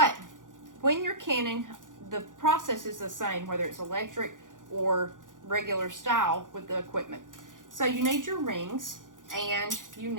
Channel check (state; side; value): late; left; 0.88 ms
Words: when you're canning, the process is the same, whether it's electric or regular style with the equipment. So you need your rings and you